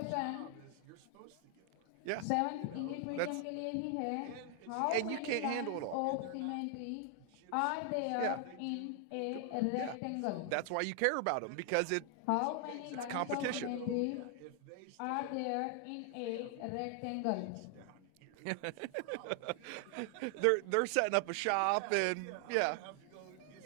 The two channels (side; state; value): both; different; correlation 0.00